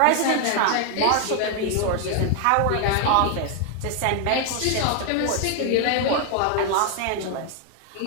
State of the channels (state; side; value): different; both; correlation 0.00